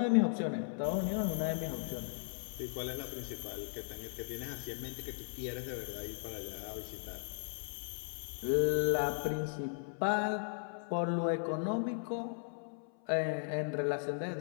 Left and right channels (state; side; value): silent; right; 53 dB below the other